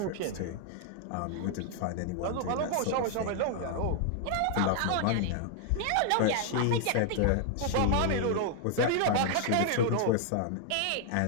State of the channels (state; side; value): different; both; correlation 0.00